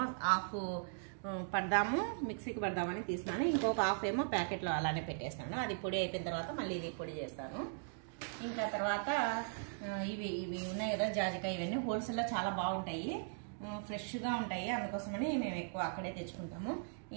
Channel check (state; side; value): silent; left; digital silence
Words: హాఫ్ పడదాము, మిక్సీకి పడదామని తీసినాను. ఇంకొక హాఫ్ ఏమో ప్యాకెట్లో అలానే పెట్టేసినాను. అది పొడి అయిపోయిన తర్వాత మళ్ళీ ఇది పొడి చేస్తాను. ఇంకా తర్వాత ఇవి ఉన్నాయి కదా జాజికాయ, ఇవన్నీ హోల్సేల్లో చాలా బాగుంటాయి, ఫ్రెష్గా ఉంటాయి, అందుకోసమని మేము ఎక్కువ అక్కడే తెచ్చుకుంటాము.